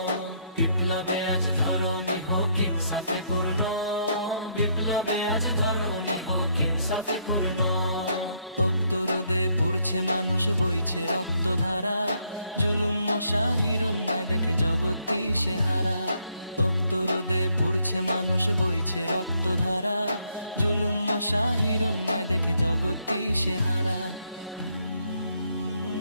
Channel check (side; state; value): both; inverted; correlation -0.72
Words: বিপ্লবে আজ ধরণী হোক ইনসাফে পূর্ণ। বিপ্লবে আজ ধরণী হোক ইনসাফে পূর্ণ। তপ্ত রোদে পুড়ছে মানুষ, বইছে রক্তধারা, জুলুম শাহির অন্যায় দেখে জগৎ দিশেহারা। তপ্ত রোদে পুড়ছে মানুষ, বইছে রক্তধারা, জুলুম শাহির অন্যায় দেখে জগৎ দিশেহারা।